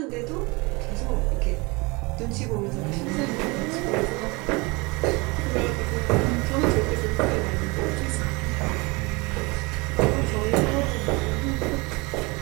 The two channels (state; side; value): quieter; left; 26.3 dB